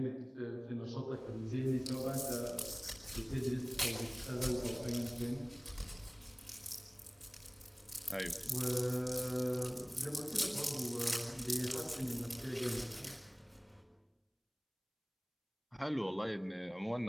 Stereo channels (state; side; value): identical; both; correlation 1.00